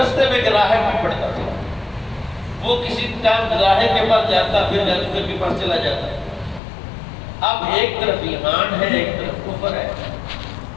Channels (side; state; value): right; drops out; at 6.6 s